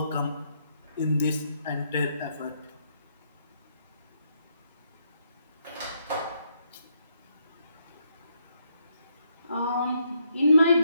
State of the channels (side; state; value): both; inverted; correlation -0.76